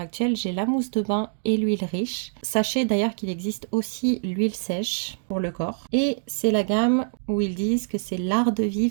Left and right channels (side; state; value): left; silent; digital silence